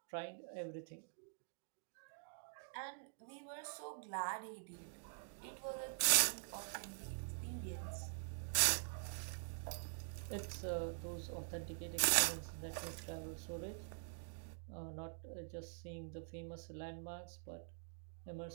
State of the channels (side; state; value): left; silent; digital silence